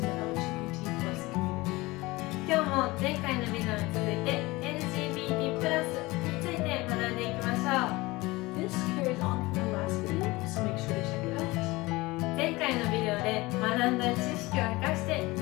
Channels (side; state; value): right; quieter; 21.5 dB